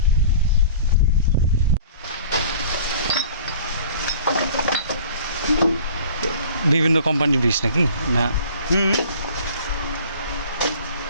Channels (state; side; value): inverted; both; correlation -0.46